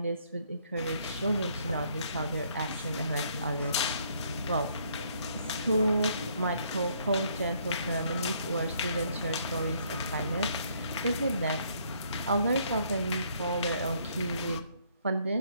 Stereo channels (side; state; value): both; inverted; correlation -0.67